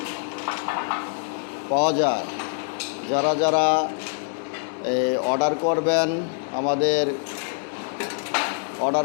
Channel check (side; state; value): right; silent; 62 dB below the other